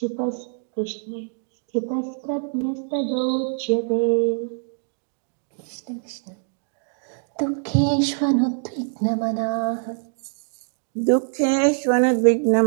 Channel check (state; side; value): silent; left; 60 dB below the other